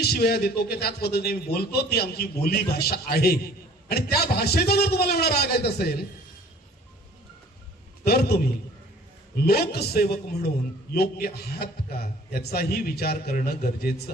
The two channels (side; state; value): both; normal; correlation 0.51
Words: शिव्या देतो की त्याच पद्धतीने बोलतो. ती आमची बोली भाषा आहे आणि त्या भाषेचा जर तुम्हाला एवढा राग येत असेल तर तुम्ही लोकसेवक म्हणून योग्य आहात का याचाही विचार करणं